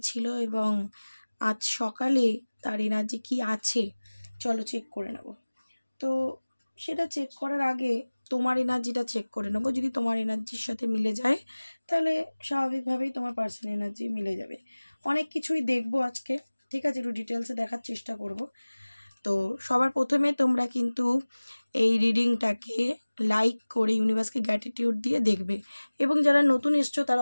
ছিল এবং আজ সকালে তার এনার্জি কী আছে। চলো চেক করে নেব। তো সেটা চেক করার আগে তোমার এনার্জিটা চেক করে নেবো। যদি তোমার এনার্জির সাথে মিলে যায় তাহলে স্বাভাবিকভাবেই তোমার পার্সোনাল এনার্জি মিলে যাবে। অনেক কিছুই দেখবো আজকে, ঠিক আছে? একটু ডিটেলসে দেখার চেষ্টা করব। তো সবার প্রথমে তোমরা কিন্তু এই রিডিংটাকে লাইক করে ইউনিভার্সকে গ্র্যাটিটিউড দিয়ে দেখবে, এবং যারা নতুন এসছো তারা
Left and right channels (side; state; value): both; inverted; correlation -1.00